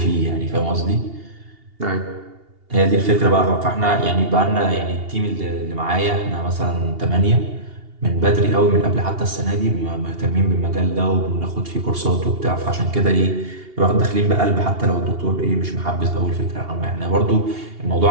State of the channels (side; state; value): left; late; 2.8 ms